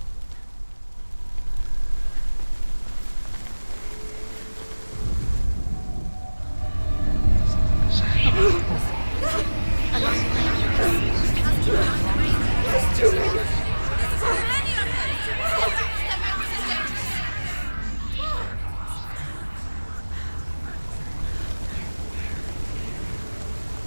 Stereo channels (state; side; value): inverted; both; correlation -1.00